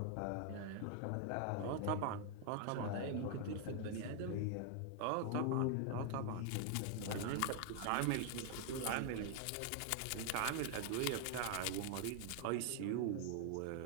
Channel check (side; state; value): both; different; correlation 0.00